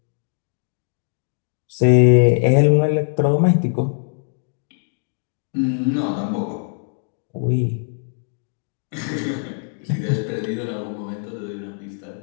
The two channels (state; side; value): silent; right; 64 dB below the other